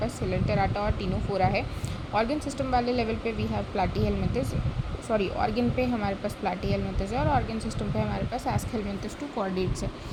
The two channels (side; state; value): both; identical; correlation 1.00